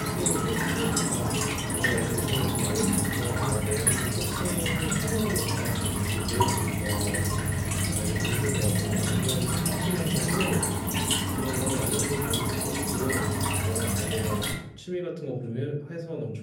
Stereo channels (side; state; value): both; identical; correlation 1.00